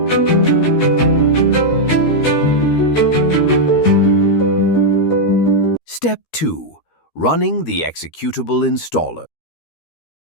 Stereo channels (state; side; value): late; right; 13 ms